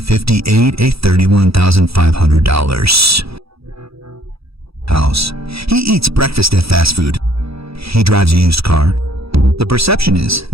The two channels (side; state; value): left; late; 0.77 ms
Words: a $31,500 house. He eats breakfast at fast food. He drives a used car. The perception is